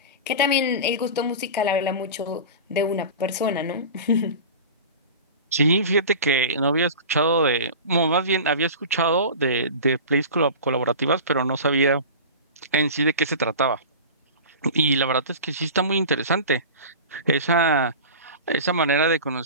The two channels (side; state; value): both; inverted; correlation -0.33